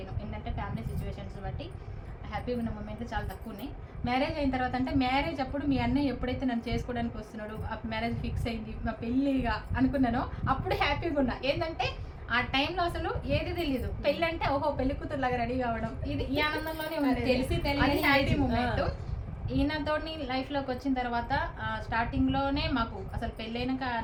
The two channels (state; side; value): identical; both; correlation 1.00